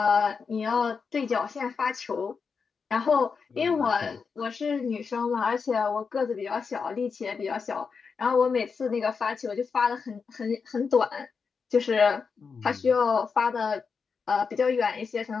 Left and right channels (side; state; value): right; quieter; 5.5 dB